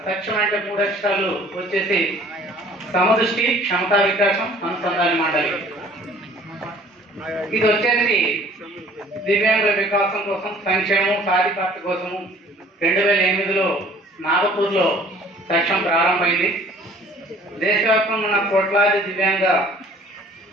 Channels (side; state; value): both; normal; correlation 0.53